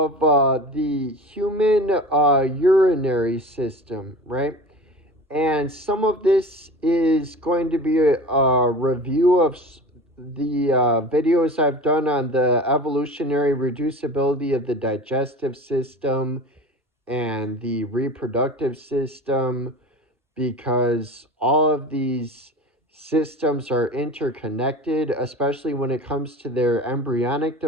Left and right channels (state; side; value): normal; both; correlation 0.35